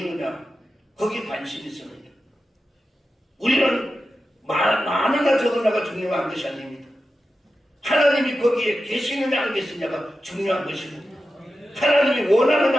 거기에 관심이 있습니다. 우리는 많으나 적으나가 중요한 것이 아닙니다. 하나님이 거기에 계시느냐 안 계시느냐가 중요한 것입니다. 하나님이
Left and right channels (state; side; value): normal; both; correlation 0.91